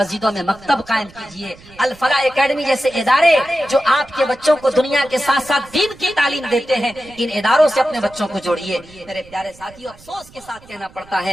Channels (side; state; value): right; noise; rumble, 24 dB below the sound